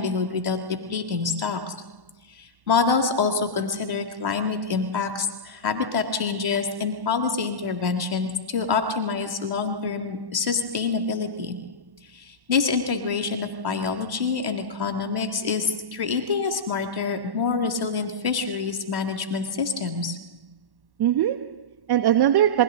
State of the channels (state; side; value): late; left; 1.1 ms